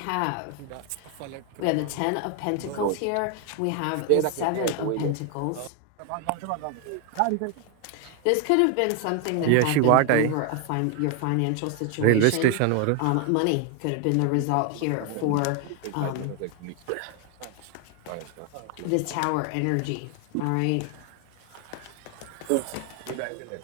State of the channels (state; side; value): different; both; correlation 0.00